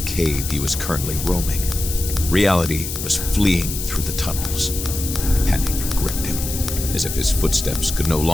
cave he was currently roaming. Reality was fleeing through the tunnels. Panic gripped him, as if his footsteps could no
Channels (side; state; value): left; noise; hiss, 6 dB below the sound